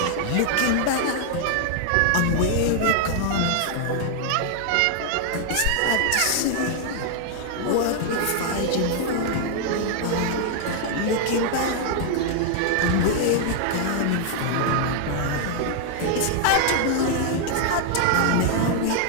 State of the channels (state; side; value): different; both; correlation 0.00